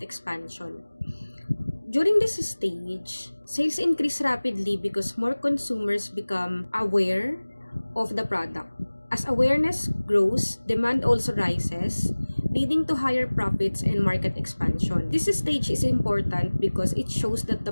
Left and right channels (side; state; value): both; inverted; correlation -1.00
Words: expansion. During this stage, sales increase rapidly because more consumers become aware of the product. As awareness grows, demand also rises, leading to higher profits and market expansion. This stage is important because it shows that the